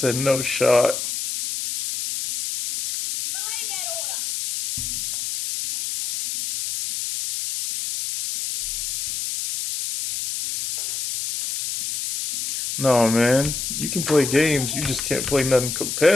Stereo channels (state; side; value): noise; left; hiss, 4 dB below the sound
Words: no shot. Belay that order. No, man. You can play games, you just can't play nothing